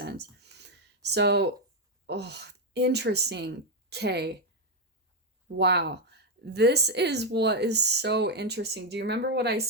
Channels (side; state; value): both; normal; correlation 0.04